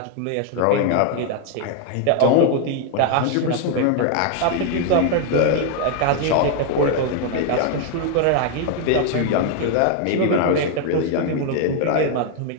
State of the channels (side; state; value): both; different; correlation 0.00